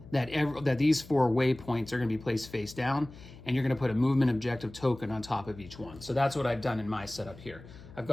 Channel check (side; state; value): left; noise; hum, 18 dB below the sound